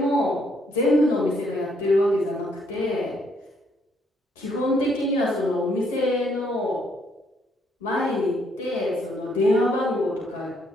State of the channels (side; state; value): both; normal; correlation 0.70